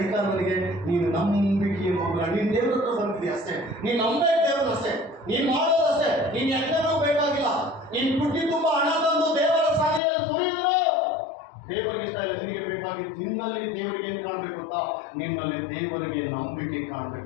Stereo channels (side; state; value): right; drops out; at 10.0 s